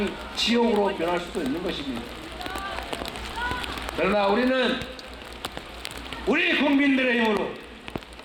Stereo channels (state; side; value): identical; both; correlation 1.00